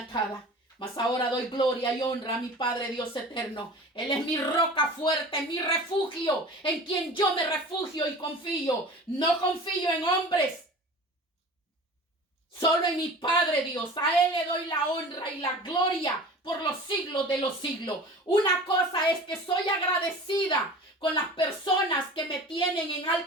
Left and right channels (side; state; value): both; normal; correlation 0.39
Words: atada, mas ahora doy gloria y honra a mi Padre Dios eterno. Él es mi roca fuerte, mi refugio, en quien yo me refugio y confío. No confío en hombres, solo en mi Padre Dios. A Él le doy la honra y la gloria por los siglos de los siglos. Una cosa es que soy agradecida con las personas que me tienen en